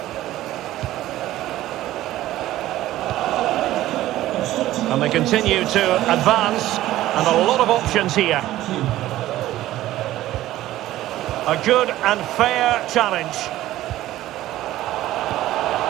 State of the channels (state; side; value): quieter; left; 14.9 dB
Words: And they continue to advance. And a lot of options here. A good and fair challenge.